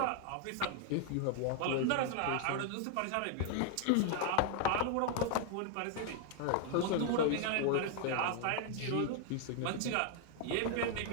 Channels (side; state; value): both; different; correlation 0.00